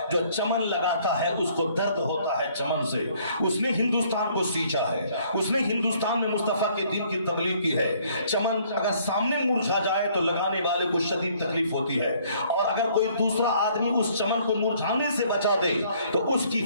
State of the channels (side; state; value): both; inverted; correlation -0.62